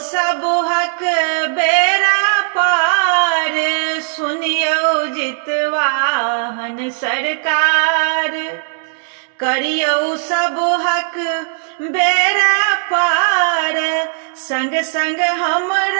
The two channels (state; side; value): silent; left; digital silence